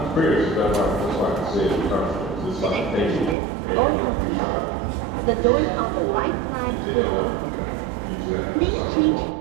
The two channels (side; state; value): left; drops out; at 3.4 s